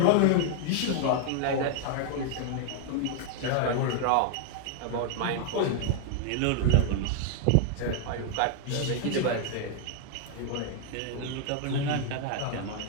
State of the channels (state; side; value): different; both; correlation 0.00